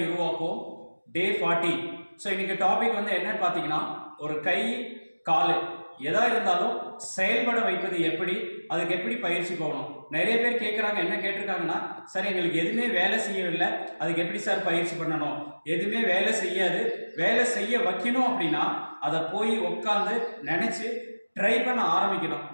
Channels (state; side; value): inverted; both; correlation -1.00